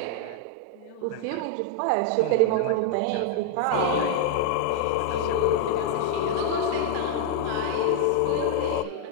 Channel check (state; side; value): different; both; correlation -0.01